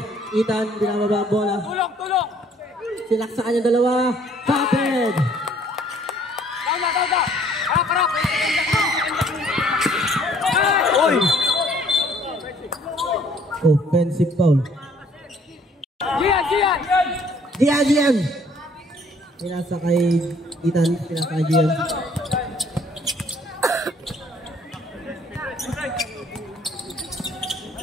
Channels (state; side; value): normal; both; correlation 0.60